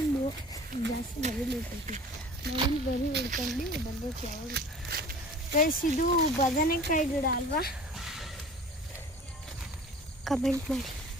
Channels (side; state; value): both; normal; correlation 0.43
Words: ಜಾಸ್ತಿ ನವಿಲು ಬರೀ ಹಿಡ್ಕೊಂಡು ಬರಬೇಕು ಯಾವಾಗ. ಗೈಸ್ ಇದು ಬದನೆಕಾಯಿ ಗಿಡ ಅಲ್ವಾ? ಕಮೆಂಟ್ ಮಾಡಿ.